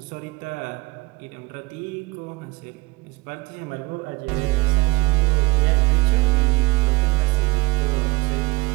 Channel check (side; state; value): left; quieter; 23.3 dB